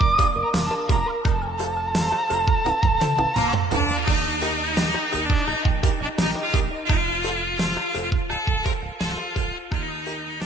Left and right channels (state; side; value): normal; both; correlation 0.67